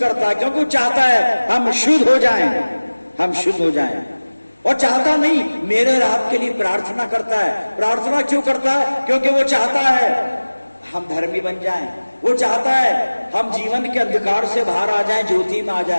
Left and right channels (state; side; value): inverted; both; correlation -1.00